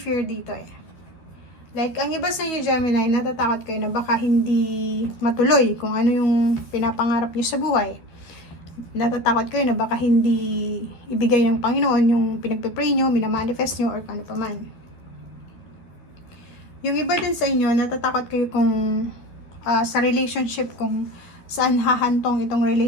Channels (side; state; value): right; late; 12 ms